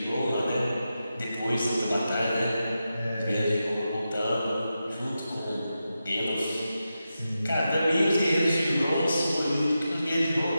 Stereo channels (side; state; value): both; inverted; correlation -0.90